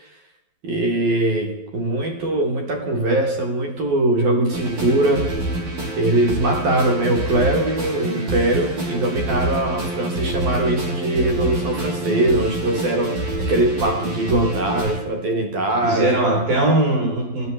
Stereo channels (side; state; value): left; late; 12 ms